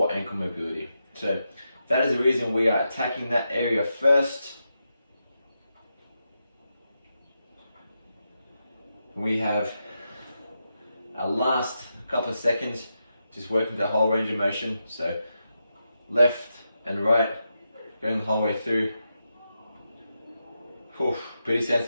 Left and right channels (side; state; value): both; inverted; correlation -0.86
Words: ankle mobility. So that is the reason we are attacking that area first. We have our last couple of seconds, just working the whole range of motion. So left and right, going the whole way through. Whew, pretty